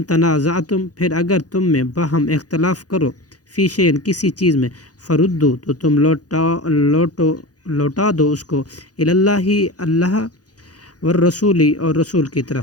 تنازعتم پھر اگر تم میں باہم اختلاف کرو فی شیء کسی چیز میں فردو تو تم لوٹا دو اس کو الی اللہ اللہ والرسول اور رسول کی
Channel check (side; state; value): right; late; 0.68 ms